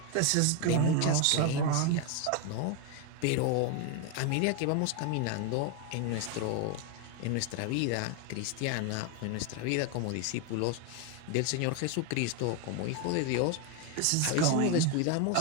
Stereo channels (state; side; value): different; both; correlation 0.01